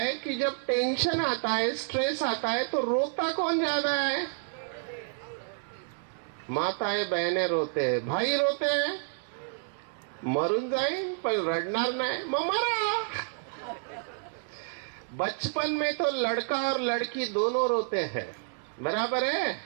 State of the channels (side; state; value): left; silent; digital silence